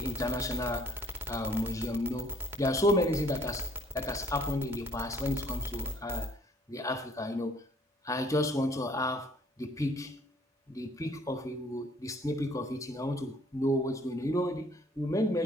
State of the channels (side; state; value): both; normal; correlation 0.59